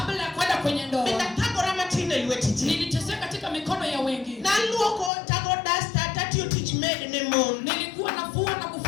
ya kwenda kwenye ndoa, thagora matin e lwet ji. niliteseka katika mikono ya wengi. Naluoko tago dasta tatiyo tich maid ne mon. Nilikuwa nafua na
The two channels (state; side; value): drops out; right; at 5.1 s